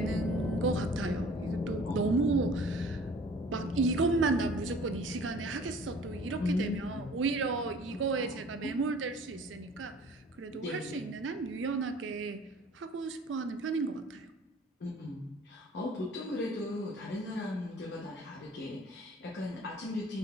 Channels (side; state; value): both; normal; correlation 0.49